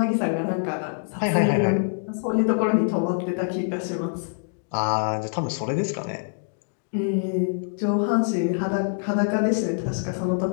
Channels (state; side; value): silent; right; digital silence